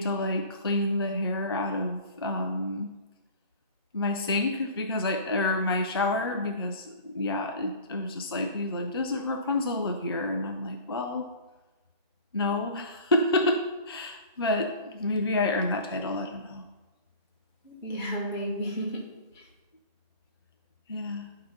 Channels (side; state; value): both; inverted; correlation -0.42